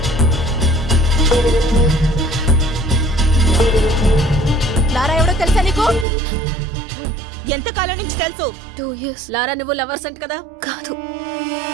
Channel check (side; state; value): left; drops out; at 6.1 s